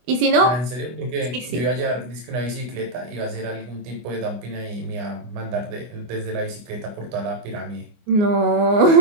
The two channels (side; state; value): left; late; 24 ms